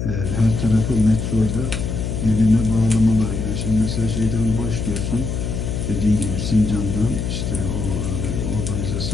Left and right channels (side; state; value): left; noise; hum, 3 dB below the sound